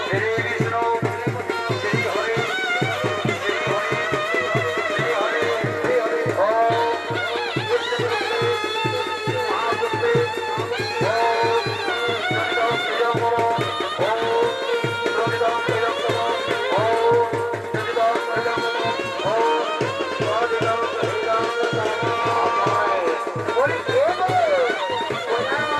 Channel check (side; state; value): both; identical; correlation 1.00